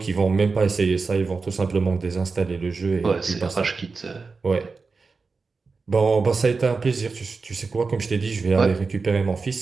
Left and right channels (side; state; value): left; quieter; 4.4 dB